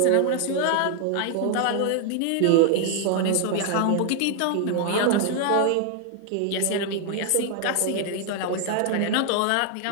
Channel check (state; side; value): different; both; correlation 0.00